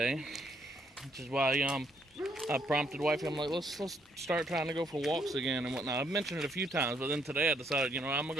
which is why I prompted wifey. I'm like, let's start trying to go for walks again and whatnot. I've mentioned it a few times, but then today I decided, I'm gonna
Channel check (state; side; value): normal; both; correlation 0.71